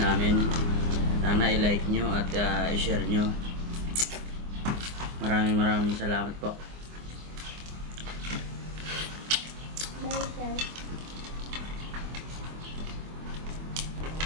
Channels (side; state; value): left; late; 24 ms